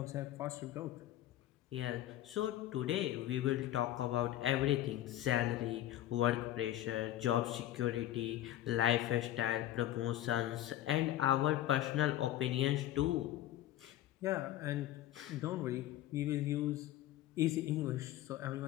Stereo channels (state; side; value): quieter; right; 13.6 dB